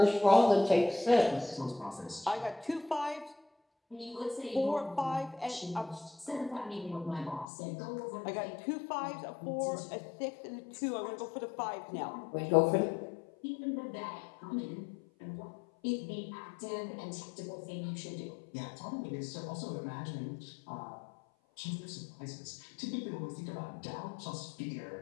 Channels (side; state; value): right; drops out; at 7.5 s